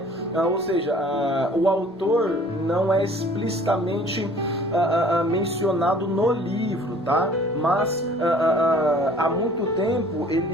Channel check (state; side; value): normal; both; correlation 0.52